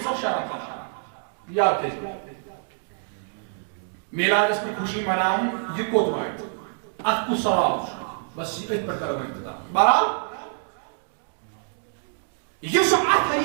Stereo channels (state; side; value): silent; left; digital silence